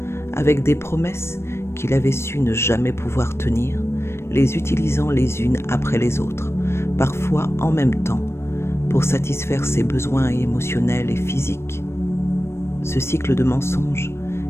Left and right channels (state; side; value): late; right; 0.12 ms